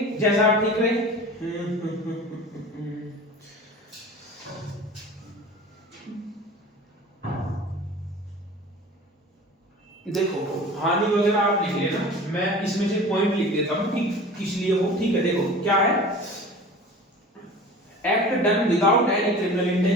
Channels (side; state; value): both; normal; correlation 0.39